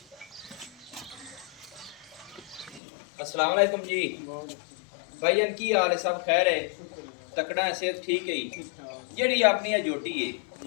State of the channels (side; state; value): right; drops out; at 2.8 s